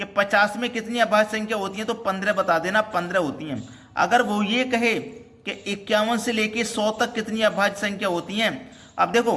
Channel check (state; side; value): identical; both; correlation 1.00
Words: 50 में कितनी अभाज्य संख्या होती हैं तो 15 बता देना, 15 होती हैं। अगर वो ये कहे कि 51 से लेके 100 तक कितनी अभाज्य संख्या होती हैं, अब देखो